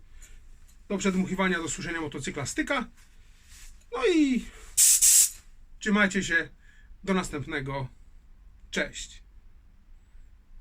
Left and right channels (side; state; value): both; identical; correlation 1.00